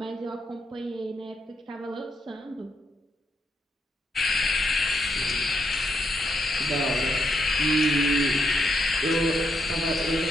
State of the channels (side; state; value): both; normal; correlation 0.78